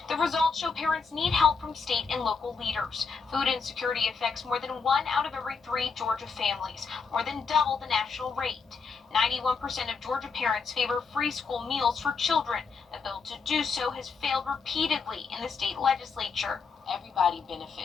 The results show parents need help from state and local leaders. Food insecurity affects more than 1 out of every 3 Georgia families, more than double the national rate. 91% of Georgia parents favor free school meals for children. A bill to do so has failed repeatedly in the state legislature. Everybody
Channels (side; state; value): right; quieter; 5.2 dB